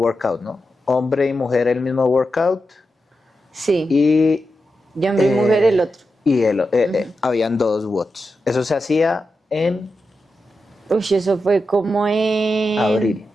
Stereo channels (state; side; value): normal; both; correlation 0.89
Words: ¿no? Hombre y mujer el mismo workout. Sí, y hombre y mujer el otro. Y habían 2 watts. Eso se hacía en... Eso fue como en... abril.